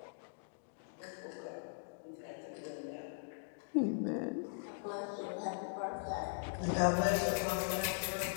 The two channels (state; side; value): silent; right; digital silence